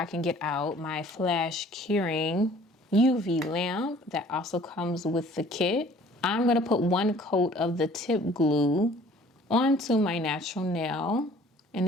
can get out my flash curing UV lamp that also comes with the kit. I'm going to put 1 coat of the tip glue onto my natural nail, and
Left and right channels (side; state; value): both; normal; correlation 0.53